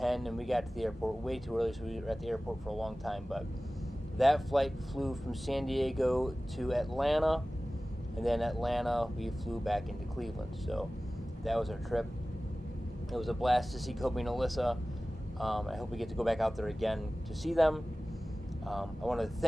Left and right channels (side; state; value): both; normal; correlation 0.97